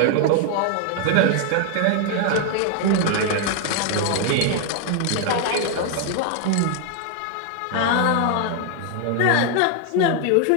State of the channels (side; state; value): both; different; correlation 0.00